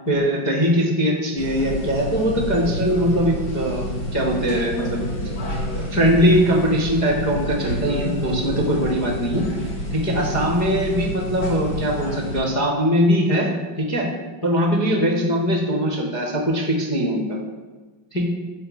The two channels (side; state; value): right; late; 4.9 ms